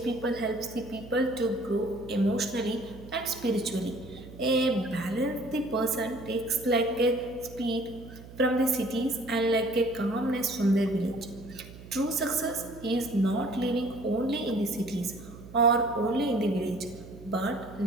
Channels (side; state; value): right; noise; hum, 17 dB below the sound